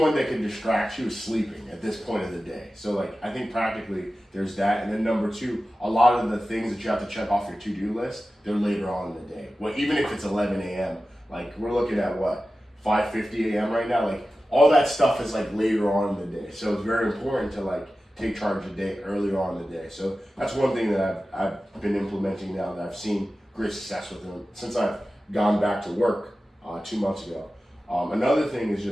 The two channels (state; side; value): normal; both; correlation 0.94